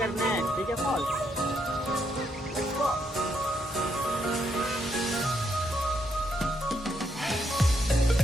ठीक है फॉल्स। Let's go.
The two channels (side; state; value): both; normal; correlation 0.76